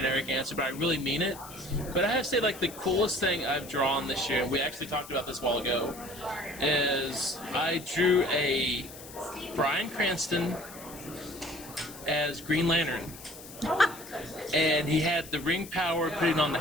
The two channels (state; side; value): noise; left; hiss, 16 dB below the sound